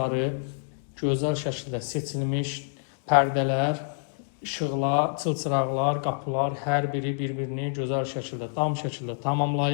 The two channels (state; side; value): silent; right; digital silence